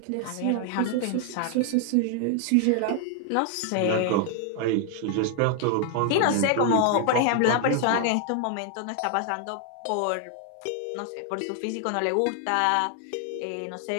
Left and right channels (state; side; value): different; both; correlation 0.00